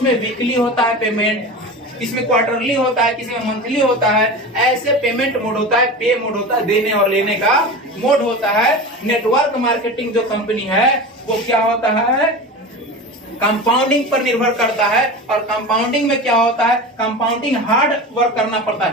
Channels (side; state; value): both; normal; correlation 0.29